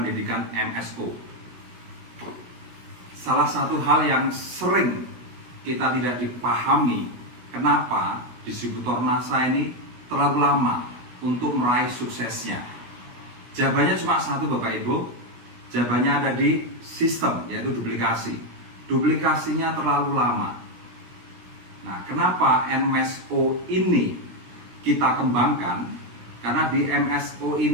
MSO. Salah satu hal yang sering kita tidak dipahami, kenapa distributor NASA ini terlalu lama untuk meraih suksesnya. Jawabannya cuma satu, Bapak Ibu. Jawabannya ada di sistem, yaitu duplikasi. Duplikasinya terlalu lama. Nah, kenapa MSO ini kita kembangkan? Karena di MSO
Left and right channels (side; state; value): left; late; 16 ms